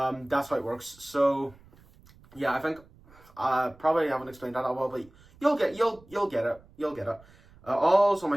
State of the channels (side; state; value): right; noise; rumble, 26 dB below the sound